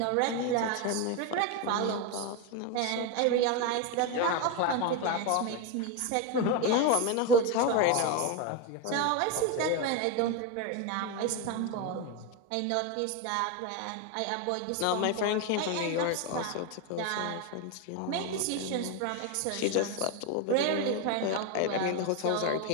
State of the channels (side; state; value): both; different; correlation 0.02